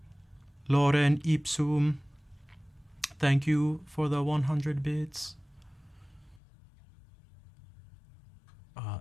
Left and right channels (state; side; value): drops out; right; at 6.4 s